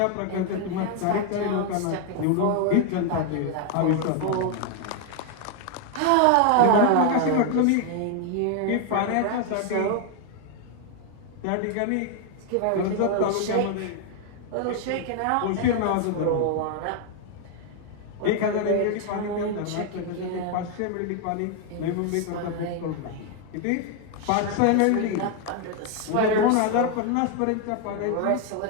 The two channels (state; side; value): different; both; correlation 0.01